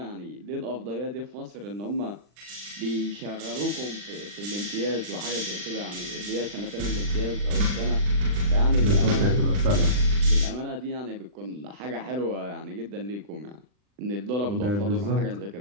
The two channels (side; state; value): left; late; 40 ms